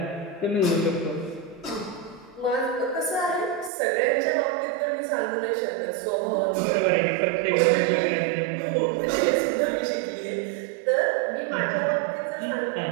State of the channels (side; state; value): left; drops out; at 3.7 s